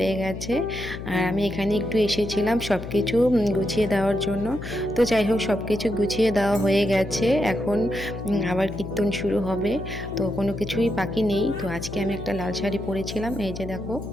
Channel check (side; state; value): left; noise; hum, 9 dB below the sound